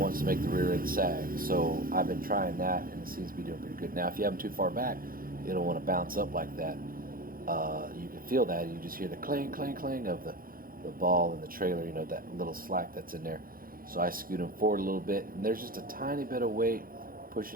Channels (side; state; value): left; late; 0.42 ms